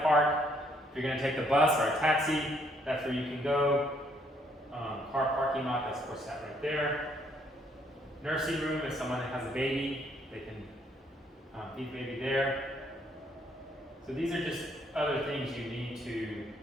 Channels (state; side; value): normal; both; correlation 0.69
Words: park. If you're gonna take the bus or a taxi, that's where you can go. Car parking lot, that's of course that right there. Nursing room, if someone has a baby, they can feed the baby there. So these are just other things you need to